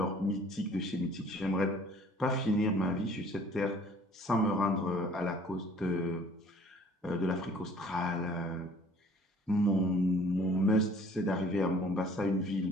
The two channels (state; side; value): normal; both; correlation 0.54